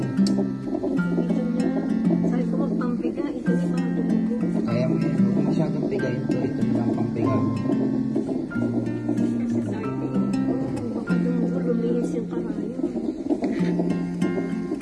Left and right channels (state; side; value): identical; both; correlation 1.00